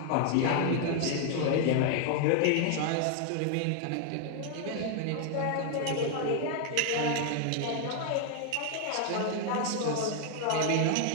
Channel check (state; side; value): different; both; correlation 0.00